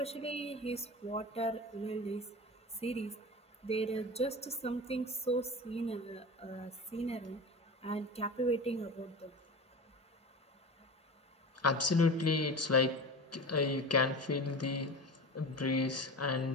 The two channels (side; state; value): both; normal; correlation 0.30